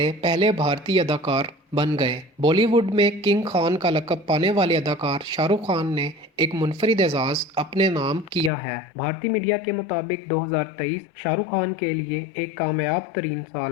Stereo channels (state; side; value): drops out; right; at 8.5 s